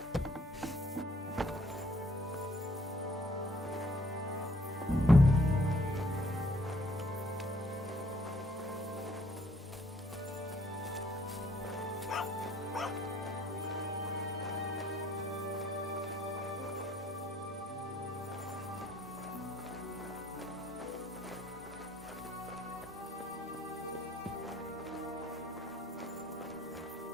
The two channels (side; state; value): both; normal; correlation 0.63